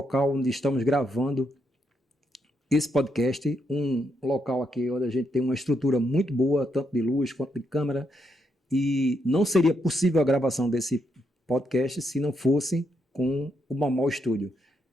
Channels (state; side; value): normal; both; correlation 0.79